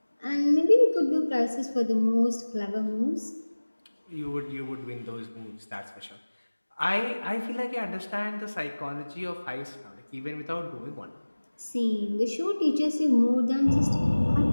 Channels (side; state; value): both; inverted; correlation -1.00